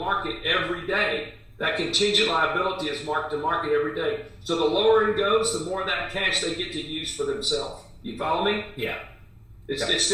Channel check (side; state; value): both; identical; correlation 1.00